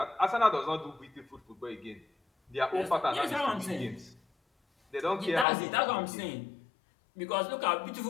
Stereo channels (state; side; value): drops out; right; at 5.5 s